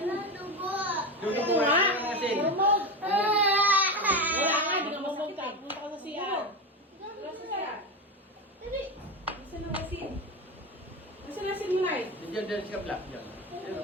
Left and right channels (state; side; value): normal; both; correlation 0.19